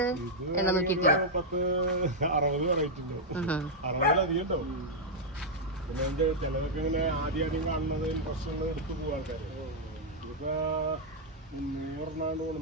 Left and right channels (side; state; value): both; normal; correlation -0.04